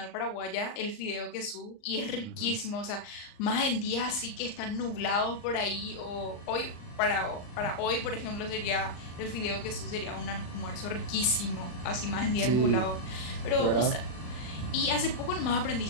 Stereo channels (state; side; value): late; right; 39 ms